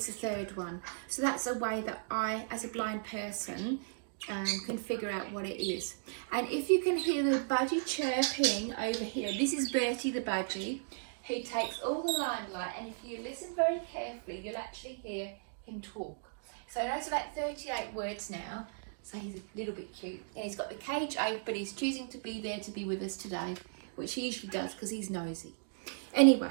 the third one. So that's a way that I, as a blind person, can figure out what it is. And if you can hear the budgie chirping over here, this is Bertie the budgie. He takes all the limelight, and if you listen very carefully, you'll actually hear him talk. So that's about 38 words now, so he's a little bit cute. And he's got the cage open, but he's choosing to be there to be with us today, which he usually does because he's nosy.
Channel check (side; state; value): left; silent; digital silence